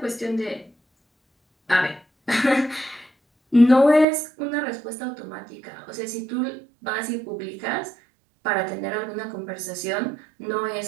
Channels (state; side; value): drops out; left; at 4.0 s